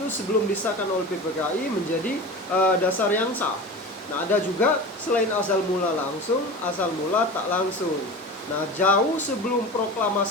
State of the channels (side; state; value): both; normal; correlation 0.32